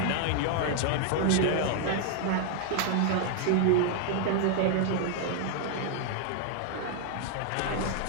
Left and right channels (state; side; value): different; both; correlation 0.00